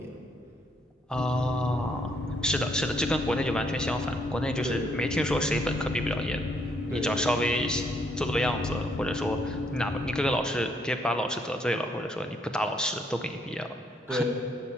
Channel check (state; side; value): normal; both; correlation 0.71